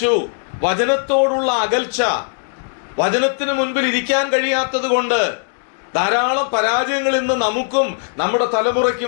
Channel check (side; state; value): right; silent; 67 dB below the other